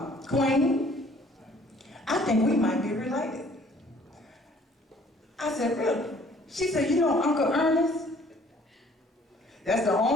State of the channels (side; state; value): both; normal; correlation 0.57